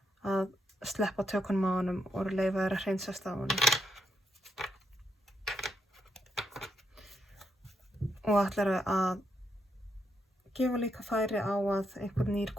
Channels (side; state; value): both; normal; correlation 0.79